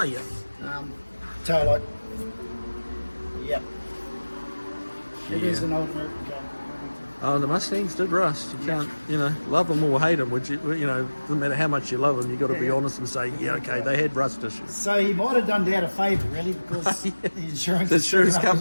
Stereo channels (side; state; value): both; inverted; correlation -1.00